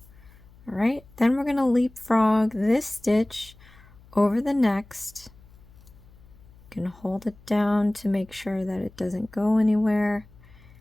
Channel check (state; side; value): noise; left; hum, 24 dB below the sound